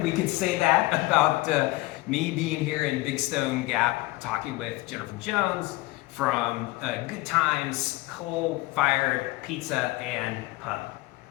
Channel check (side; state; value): right; quieter; 20.2 dB